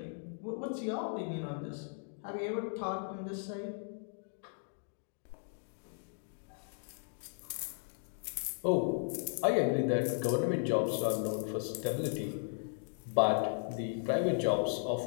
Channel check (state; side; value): silent; right; digital silence